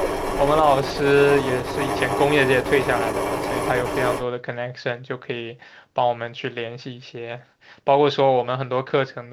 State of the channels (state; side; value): identical; both; correlation 1.00